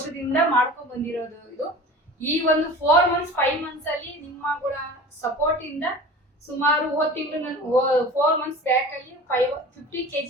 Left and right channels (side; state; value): both; normal; correlation 0.38